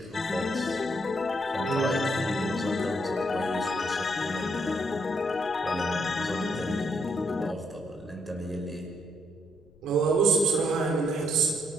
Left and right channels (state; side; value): noise; left; rumble, 28 dB below the sound